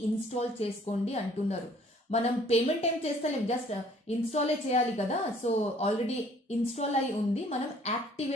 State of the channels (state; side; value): normal; both; correlation 0.57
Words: ఇన్స్టాల్ చేసుకోండి అంటున్నారు. మనం పేమెంట్ ఏం చేస్తలేం, జస్ట్ ఇన్స్టాలే చేయాలి కదా. సో ఆల్రెడీ ఇన్స్టాల్ అయి ఉంది, మనం